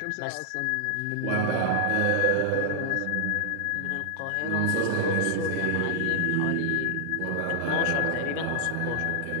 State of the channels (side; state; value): both; different; correlation -0.01